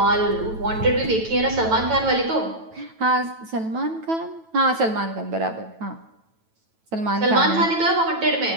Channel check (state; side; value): late; left; 9.1 ms